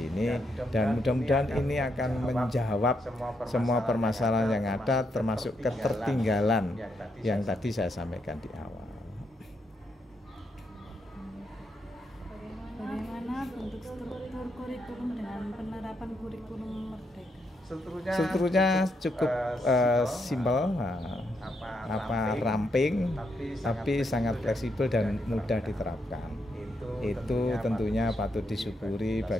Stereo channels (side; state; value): both; normal; correlation 0.79